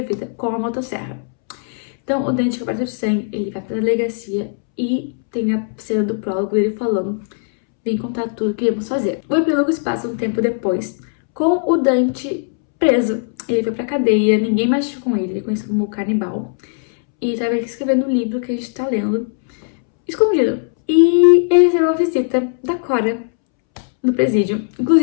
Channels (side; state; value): right; silent; 67 dB below the other